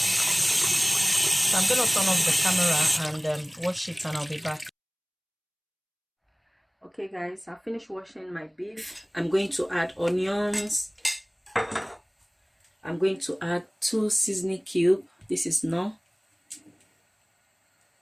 So I'm gonna turn off the camera and wash it, and I'll be back. Okay guys, I finished washing my beef. I'm going to add onions. I'm going to add 2 seasoning cubes. This is no.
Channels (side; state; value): both; identical; correlation 1.00